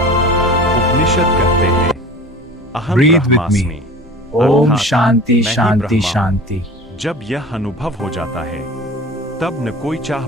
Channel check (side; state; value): both; normal; correlation 0.38